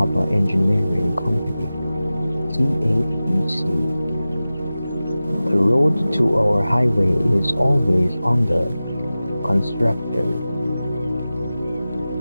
Engineering Company, CHEC. The road to our highway is always under construction,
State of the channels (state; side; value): inverted; both; correlation -0.96